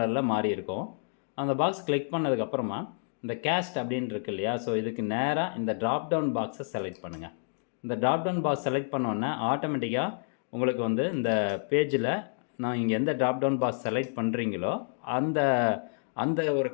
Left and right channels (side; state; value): right; silent; digital silence